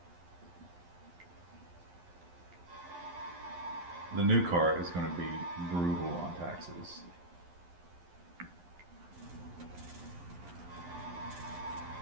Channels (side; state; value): left; late; 11 ms